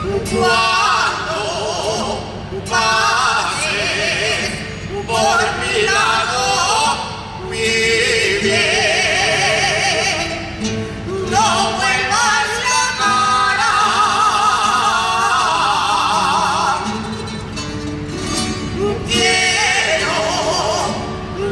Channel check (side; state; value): both; identical; correlation 1.00